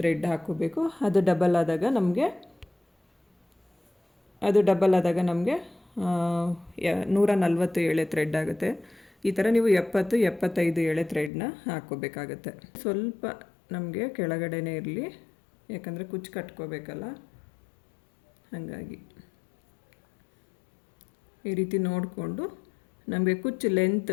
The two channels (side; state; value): right; drops out; at 11.3 s